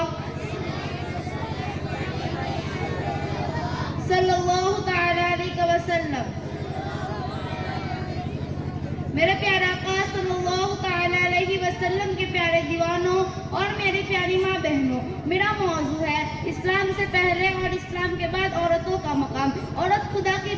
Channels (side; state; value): both; identical; correlation 1.00